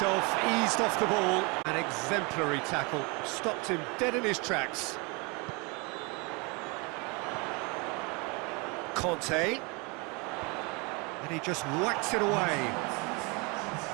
eased off the ball. An exemplary tackle. Stopped him dead in his tracks. Conte. And he just whacks it away.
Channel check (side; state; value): left; quieter; 29.6 dB